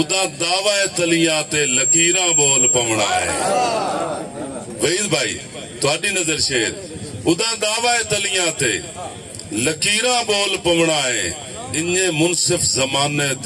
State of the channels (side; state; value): both; identical; correlation 1.00